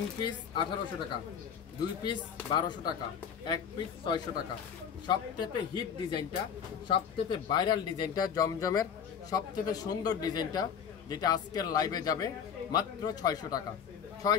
পিস 1800 টাকা, 2 পিস 1200 টাকা, 1 পিস 600 টাকা। সবচেয়ে হিট ডিজাইনটা, সবচেয়ে ভাইরাল ডিজাইনটা, জমজমের সবচেয়ে সুন্দর ডিজাইনটা, যেটা আজকের লাইভে যাবে মাত্র 600 টাকা।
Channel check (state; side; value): quieter; right; 7.6 dB